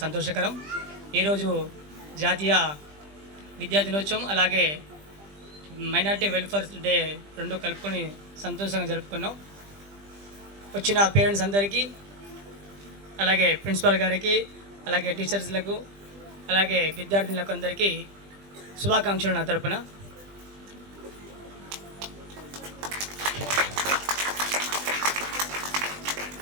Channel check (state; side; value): late; left; 20 ms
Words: సంతోషకరం. ఈరోజు జాతీయ విద్యా దినోత్సవం అలాగే మైనార్టీ వెల్ఫేర్ డే రెండు కలుపుకొని సంతోషంగా జరుపుకున్నాం. వచ్చిన పేరెంట్స్ అందరికీ, అలాగే ప్రిన్సిపాల్ గారికి, అలాగే టీచర్స్లకు, అలాగే విద్యార్థులకు అందరికీ శుభాకాంక్షలు నా తరపున.